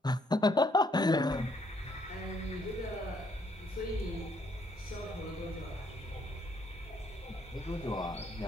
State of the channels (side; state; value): both; normal; correlation 0.69